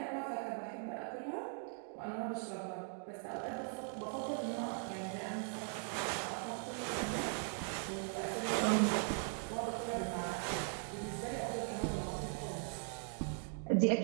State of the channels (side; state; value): left; silent; 51 dB below the other